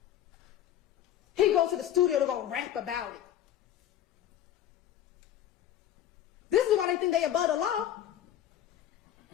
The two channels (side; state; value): right; quieter; 11.2 dB